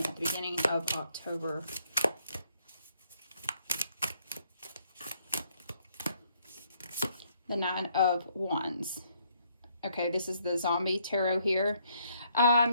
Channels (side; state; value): both; inverted; correlation -0.69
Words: at the beginning of October. The Nine of Wands. Okay, this is the zombie tarot here.